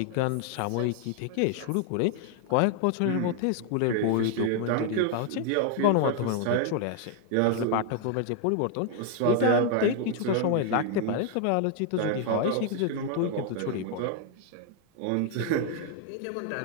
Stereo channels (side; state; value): both; different; correlation 0.00